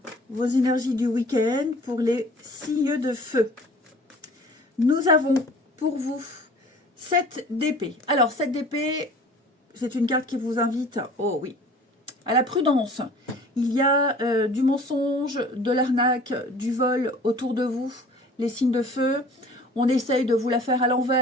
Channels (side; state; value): both; normal; correlation 0.47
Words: vos énergies du week-end pour les signes de feu. Nous avons pour vous 7 d'épée. Alors, 7 d'épée, c'est une carte qui vous invite, oh oui, à la prudence. Il y a du mensonge, de l'arnaque, du vol autour de vous, les signes de feu. On essaye de vous la faire à